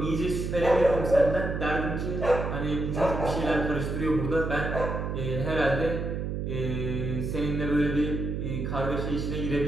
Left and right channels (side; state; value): right; noise; hum, 3 dB below the sound